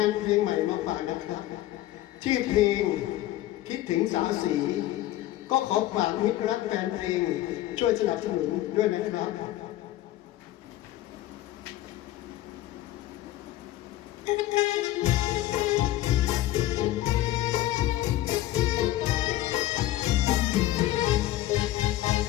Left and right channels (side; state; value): right; quieter; 14.9 dB